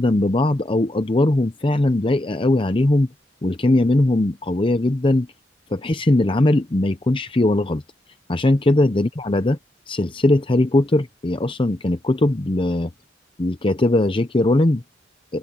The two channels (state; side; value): normal; both; correlation 0.83